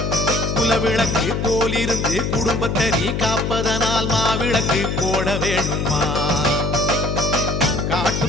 குலவிளக்கு போலிருந்து குடும்பத்தை நீ காப்பதனால் மாவிளக்கு போட வேணுமா?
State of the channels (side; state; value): left; noise; hum, 1 dB below the sound